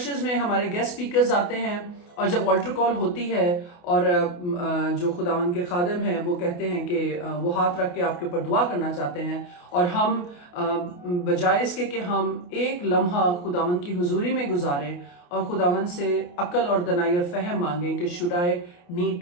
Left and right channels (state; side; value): late; right; 28 ms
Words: में हमारे गेस्ट स्पीकर्स आते हैं, और जब ऑल्टर कॉल होती है और जो खुदावन के खादिम हैं वो कहते हैं कि वो हाथ रख के आपके ऊपर दुआ करना चाहते हैं, और हम बजाय इसके कि हम एक लम्हा खुदावन की हुजूरी में गुजारें और खुदावन से अक्ल और दनाई और फहम मांगें कि should I need